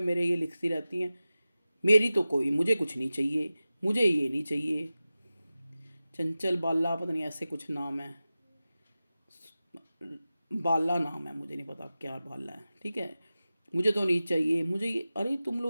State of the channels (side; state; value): both; inverted; correlation -0.95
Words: मेरे ये लिखती रहती हैं, मेरी तो कोई, मुझे कुछ नहीं चाहिए, मुझे ये नहीं चाहिए, चंचल बाला पता नहीं ऐसे कुछ नाम है, बाला नाम है, मुझे नहीं पता क्या बाला है, ठीक है। मुझे तो नहीं चाहिए, मुझे ये, अरे तुम